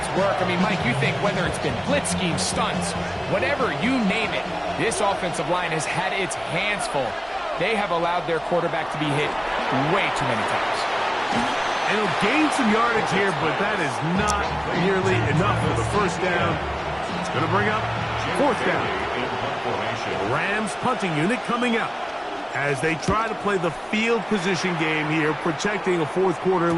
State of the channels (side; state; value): both; identical; correlation 1.00